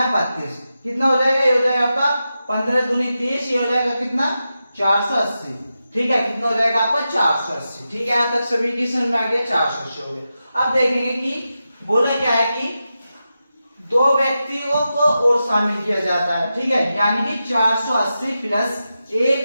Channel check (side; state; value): both; inverted; correlation -0.90